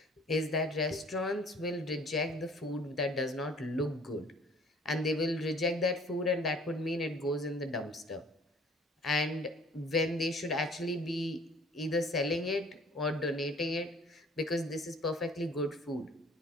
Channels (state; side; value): normal; both; correlation 0.53